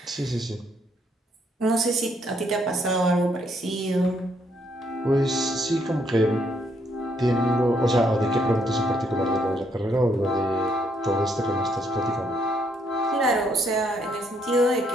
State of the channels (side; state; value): both; normal; correlation 0.72